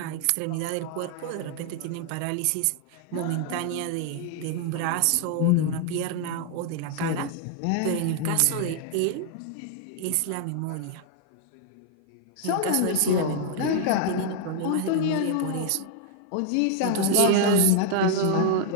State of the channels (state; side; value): different; both; correlation 0.00